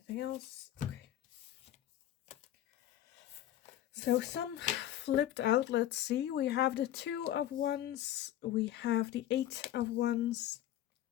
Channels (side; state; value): right; quieter; 12.5 dB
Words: else? Okay. So some flipped out. Let's see. We have the 2 of Wands. We have the 8 of Wands.